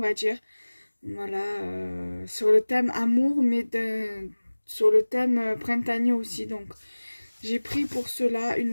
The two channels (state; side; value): inverted; both; correlation -1.00